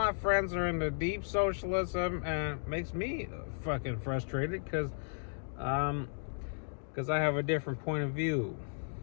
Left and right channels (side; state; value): right; silent; digital silence